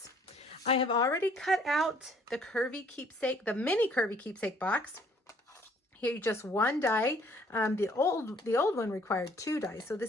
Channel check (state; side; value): normal; both; correlation 0.60